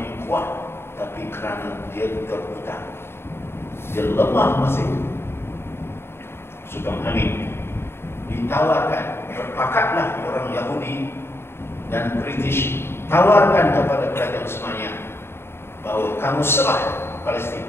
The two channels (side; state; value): right; late; 0.12 ms